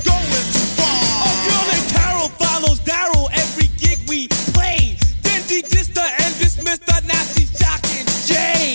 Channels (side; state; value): both; inverted; correlation -1.00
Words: going too far. A girl named Carol follows Daryl every gig we play. Then she dissed her and dismissed her, now she's jocking